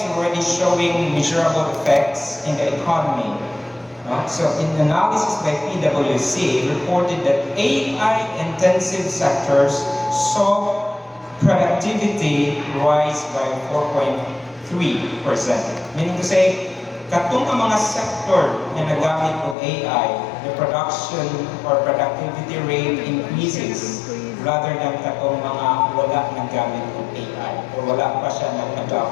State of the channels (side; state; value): right; drops out; at 19.6 s